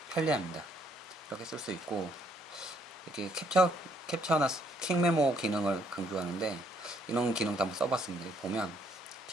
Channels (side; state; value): both; normal; correlation 0.69